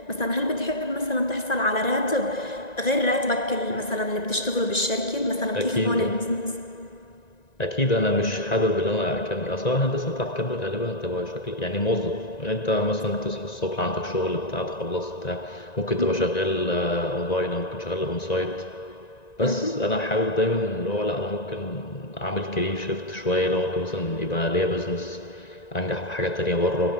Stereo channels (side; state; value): right; late; 1.9 ms